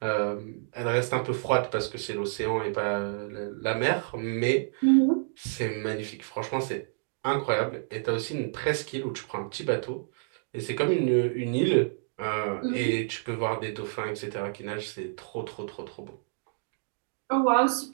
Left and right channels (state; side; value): silent; left; digital silence